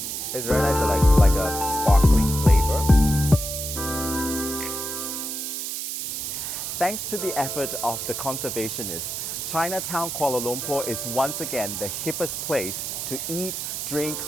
It's very nice, like a sparkling flavor. Thanks to the effort of the conservationists, Chinatown Kuala Lumpur is once again the hippest place to eat, drink,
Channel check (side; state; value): right; noise; hiss, 4 dB below the sound